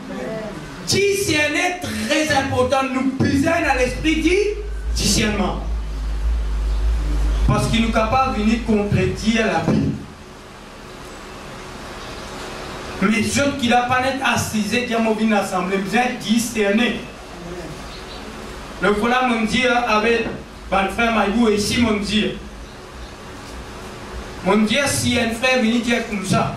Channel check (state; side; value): identical; both; correlation 1.00